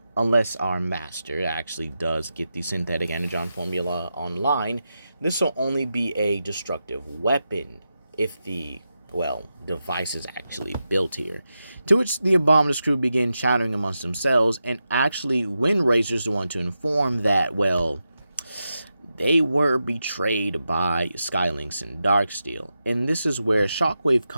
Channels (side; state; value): both; inverted; correlation -0.89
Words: Unless our master actually does get the synthetic energon formula online, this will only be a destructive weapon if the, well, device is actually built here. To which the Abominus crew begin chattering amongst themselves, and actually Windrazor's the one to inform that, well, they were betrayed by Skylynx and Darksteel. And this is where Shockwave